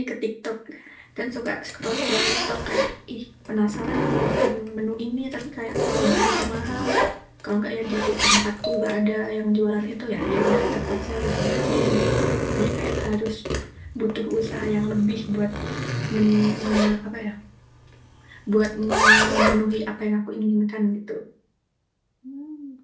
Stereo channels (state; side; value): identical; both; correlation 1.00